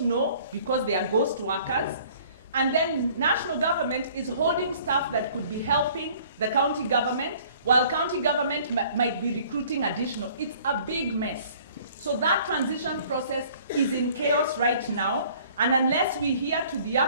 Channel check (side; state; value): both; inverted; correlation -0.54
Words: because they are ghost workers, and then national government is holding staff that could be helping the county government, while county government might be recruiting additional. It's a big mess. So that transition process is in chaos right now, and unless we hear to